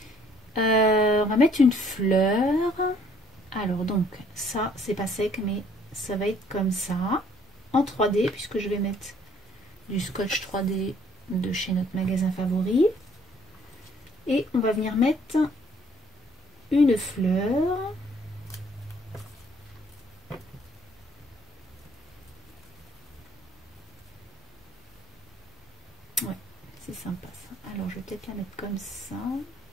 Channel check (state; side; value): normal; both; correlation 0.61